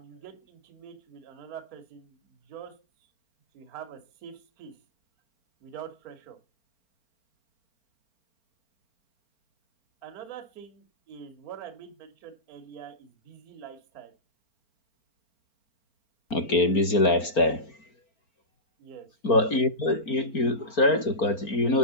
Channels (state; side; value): late; right; 4.4 ms